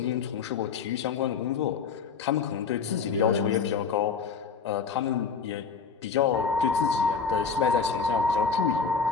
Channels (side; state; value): right; quieter; 5.6 dB